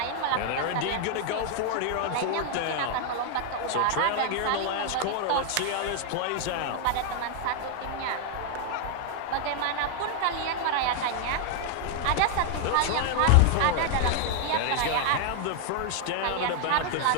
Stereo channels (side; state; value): both; different; correlation 0.00